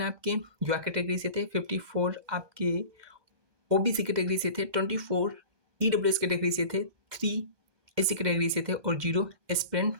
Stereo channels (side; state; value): left; late; 1.2 ms